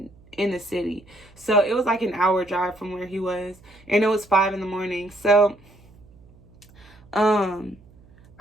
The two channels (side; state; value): right; noise; hum, 26 dB below the sound